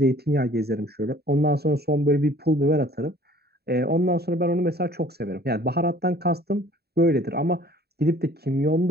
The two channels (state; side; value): late; left; 0.47 ms